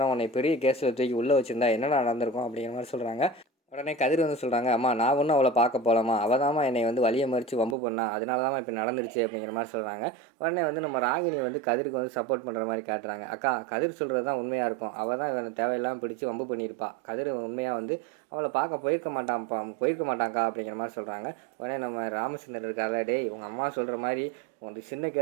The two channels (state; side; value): drops out; left; at 7.8 s